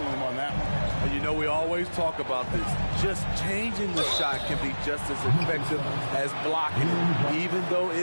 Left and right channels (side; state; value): both; inverted; correlation -1.00